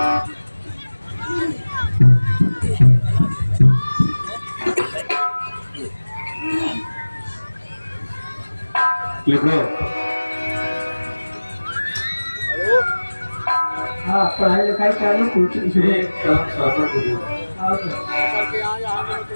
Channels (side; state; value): both; inverted; correlation -1.00